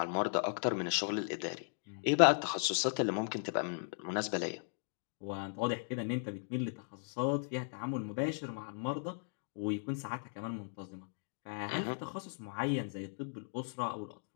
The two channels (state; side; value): silent; right; digital silence